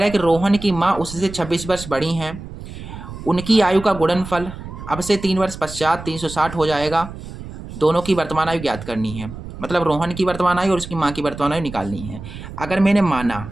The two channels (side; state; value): right; noise; rumble, 12 dB below the sound